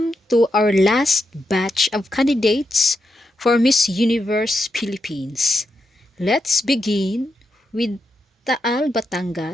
to our last batch of candidates for Miss Universe Philippines. Let's begin with Taal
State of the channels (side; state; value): both; normal; correlation 0.84